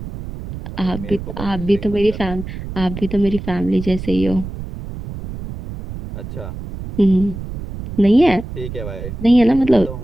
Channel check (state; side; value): noise; right; rumble, 9 dB below the sound